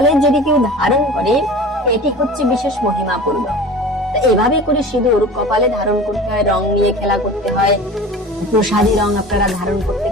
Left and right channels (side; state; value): both; normal; correlation 0.37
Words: যদি কেউ ধারণ করে, এটি হচ্ছে বিশেষ মহিমাপূর্ণ। এভাবে করে সিঁদুর কপালে ধারণ করতে হয়, রং নিয়ে খেলা করতে হয়, প্রসাদী রং আপনারা ধারণ করতে